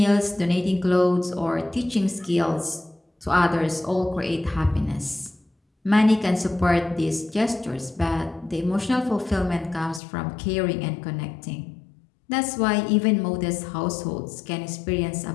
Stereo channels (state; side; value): drops out; right; at 10.0 s